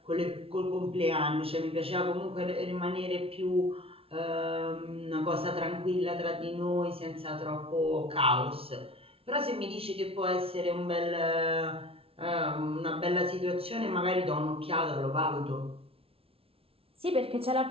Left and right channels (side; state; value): left; late; 0.27 ms